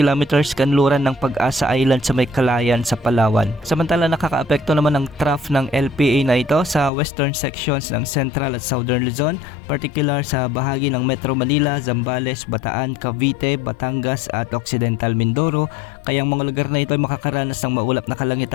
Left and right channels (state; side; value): drops out; right; at 6.9 s